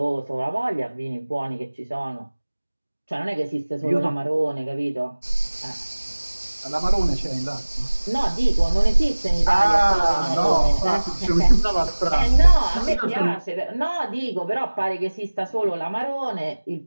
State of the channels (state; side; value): inverted; both; correlation -1.00